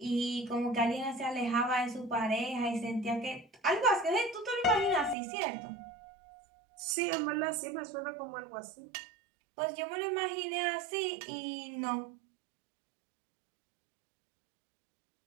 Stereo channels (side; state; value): left; drops out; at 5.2 s